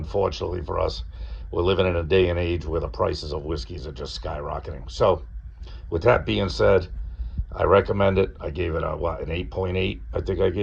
for us, we're living in a day and age where the prices of whiskeys are just skyrocketing. So, with that being said, I recommend it. I gave it an 8.8, I think I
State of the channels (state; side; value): identical; both; correlation 1.00